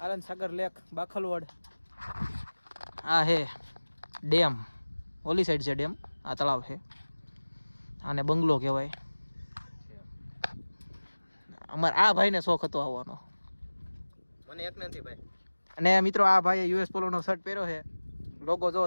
આનંદ સાગર લેક બાખલવડ. આ હે ડેમ, ઓલી સાઈડ છે ડેમ, આ તળાવ છે. આને બંગલો કહેવાય. અમારે આ ભાઈને શોખ હતો આવવાનો. મને એક નથી ભાઈ. અને મિત્રો આ ભાઈએ યુએસ પોલોનો શર્ટ પહેર્યો છે. લોગો જો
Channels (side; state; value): both; inverted; correlation -1.00